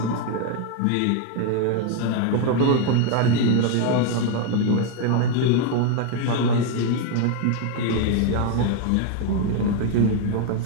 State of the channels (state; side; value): different; both; correlation 0.01